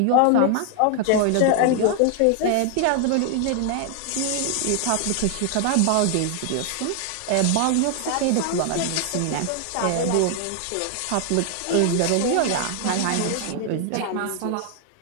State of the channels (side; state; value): both; different; correlation 0.00